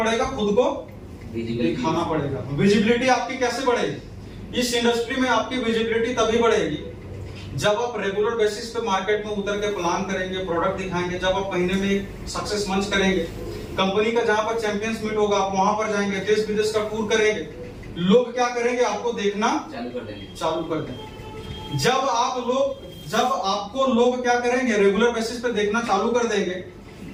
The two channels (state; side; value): identical; both; correlation 1.00